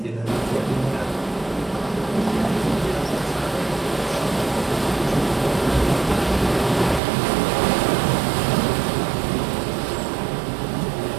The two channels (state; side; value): drops out; left; at 7.0 s